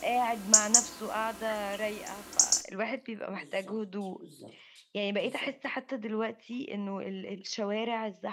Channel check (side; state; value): both; identical; correlation 1.00